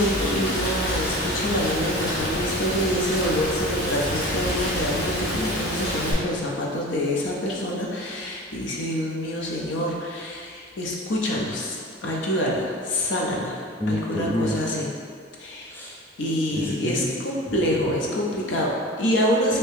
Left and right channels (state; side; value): normal; both; correlation 0.36